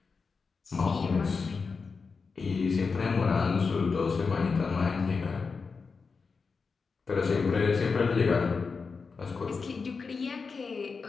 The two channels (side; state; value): right; quieter; 4.9 dB